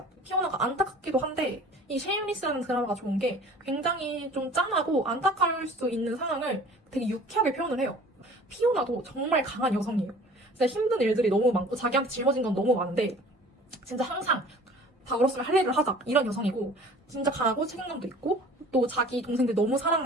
피오나가 안타깝기도 한데 이 쉐임리스라는 드라마가 좋은 게 굉장히 좀 짠하고 안타까울 수 있는 상황을 되게 유쾌하게 표현을 해요. 피오나도 정말 강한 여성이에요. 진짜 힘든 일들이 너무 많고 자기한테 짊어진 건 너무 많은데 진짜 항상 다 얼었으면 할 일을 하자 이런 여성이고 진짜 강하고 책임감도 있고 또 자기 동생들 너무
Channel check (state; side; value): normal; both; correlation 0.47